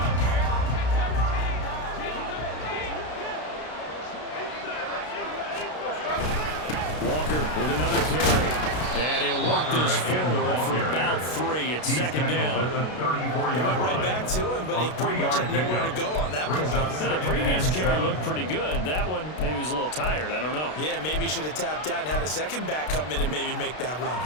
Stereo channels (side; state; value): right; late; 33 ms